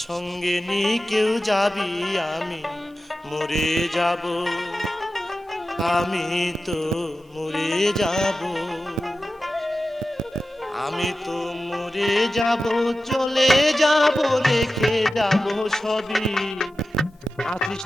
সঙ্গে নি কেউ যাবি, আমি মরে যাব, আমি তো মরে যাব, আমি তো মরে যাব, চলে যাব, রেখে যাব সবই। আছিস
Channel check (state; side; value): normal; both; correlation 0.93